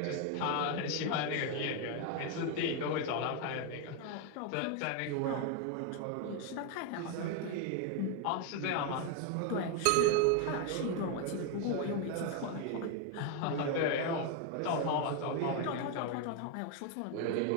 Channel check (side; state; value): both; different; correlation 0.01